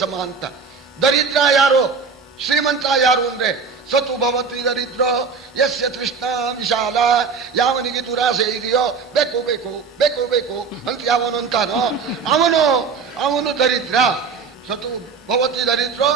ಸಮ ಅಂತ. ದರಿದ್ರ ಯಾರು, ಶ್ರೀಮಂತ ಯಾರು ಅಂದ್ರೆ ಸತು ಭವತಿ ದರಿದ್ರೋ ಯಸ್ಯ ತೃಷ್ಣ ವಿಶಾಲ. ಯಾವನಿಗೆ ದುರಾಸೆ ಇದೆಯೋ ಬೇಕು ಬೇಕು ಬೇಕು ಬೇಕು ಅಂತ ಯಾವನು ಅಂತಾನೋ ಅವನು ದರಿದ್ರ. ಸತು ಭವತಿ ದರಿದ್ರೋ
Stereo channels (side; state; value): left; quieter; 5.3 dB